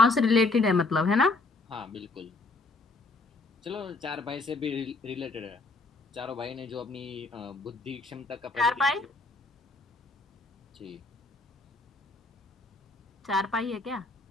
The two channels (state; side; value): quieter; right; 3.4 dB